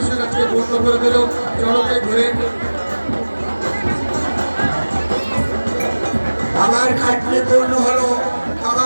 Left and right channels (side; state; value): both; inverted; correlation -1.00